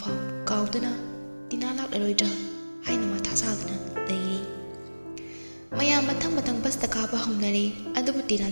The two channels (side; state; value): both; inverted; correlation -1.00